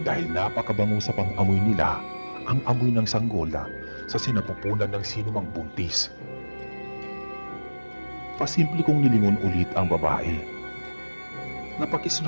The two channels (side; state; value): both; inverted; correlation -1.00